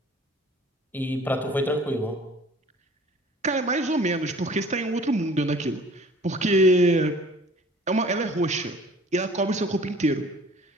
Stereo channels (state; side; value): normal; both; correlation 0.49